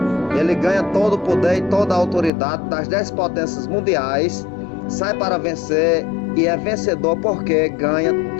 Ele ganha todo o poder e toda a autoridade das 10 potências mundiais. Sai para vencer e é vencedor porque ganha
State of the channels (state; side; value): drops out; right; at 2.3 s